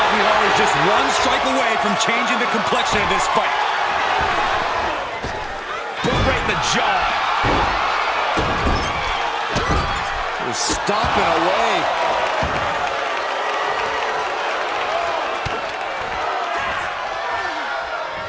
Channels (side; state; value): both; identical; correlation 1.00